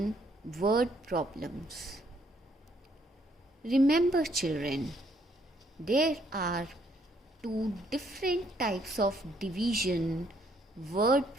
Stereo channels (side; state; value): both; normal; correlation 0.68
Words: word problems. Remember children, there are two different types of division word